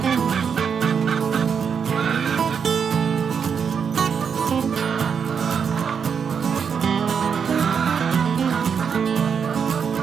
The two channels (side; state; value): left; quieter; 6.7 dB